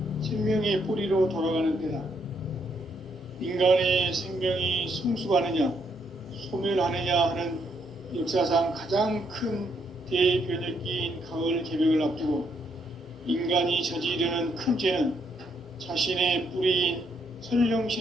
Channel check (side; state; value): both; normal; correlation 0.74